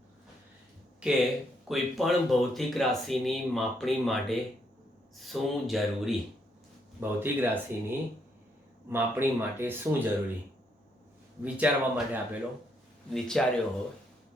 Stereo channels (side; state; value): both; normal; correlation 0.74